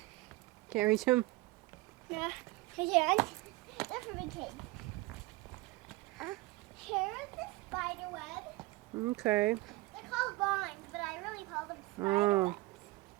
Can't reach him. No. Again. They're for big kids. Here's the spider web. Okay. They're called vines, but I really call them spider Oh. webs.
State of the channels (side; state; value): left; quieter; 20.7 dB